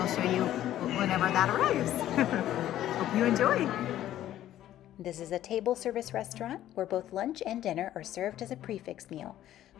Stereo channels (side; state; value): right; quieter; 12.7 dB